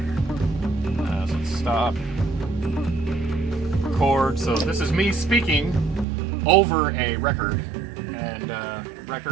So let's stop. Record. So this is me speaking over a record. And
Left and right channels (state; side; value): drops out; left; at 6.1 s